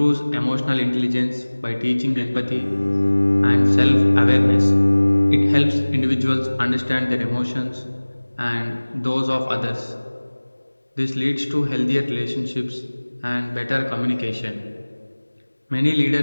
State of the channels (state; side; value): inverted; both; correlation -1.00